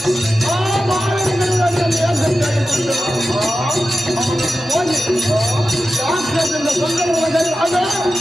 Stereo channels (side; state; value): both; normal; correlation 0.92